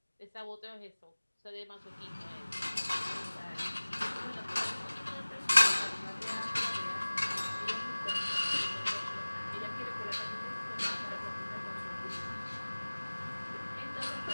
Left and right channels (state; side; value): inverted; both; correlation -1.00